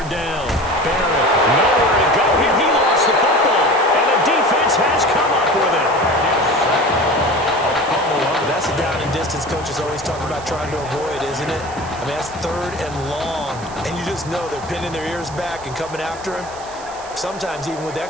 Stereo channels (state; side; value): noise; right; hiss, 18 dB below the sound